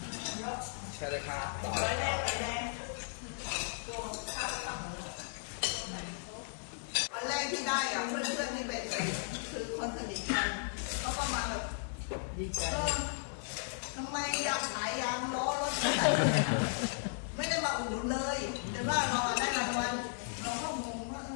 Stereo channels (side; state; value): right; silent; 54 dB below the other